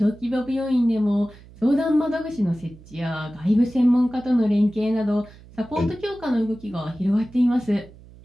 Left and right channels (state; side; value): noise; right; hum, 22 dB below the sound